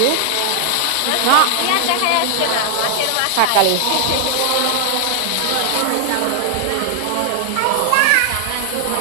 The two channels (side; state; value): both; different; correlation 0.00